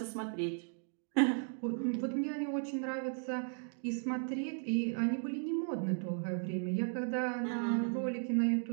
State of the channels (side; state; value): left; silent; 54 dB below the other